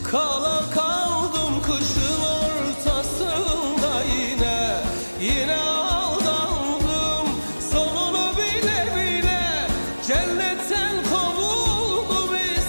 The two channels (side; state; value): both; inverted; correlation -1.00